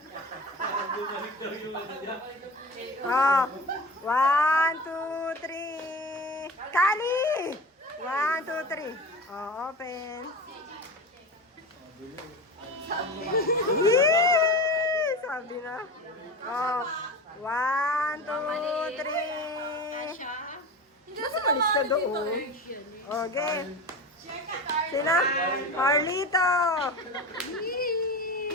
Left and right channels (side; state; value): both; normal; correlation 0.30